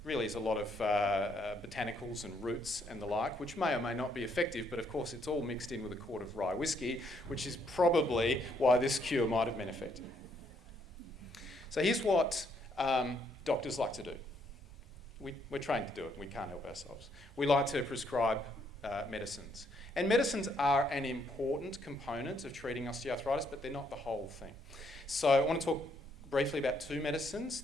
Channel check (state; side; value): normal; both; correlation 0.71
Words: really is a lot of botanicals and roots and the like, which may or may not be effective, but of course it's all mixed in with a quart of rye whiskey, which is probably why this cure might have been effective. So here's what doctors like to do. We're trained to do it, we can't help ourselves. We like to prescribe medicines. And medicines are an important component of treating osteoarthritis, but they're not the whole thing. So I want to talk briefly about two medicines.